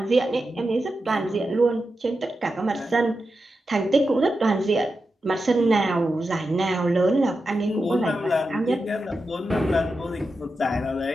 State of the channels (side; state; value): both; normal; correlation 0.90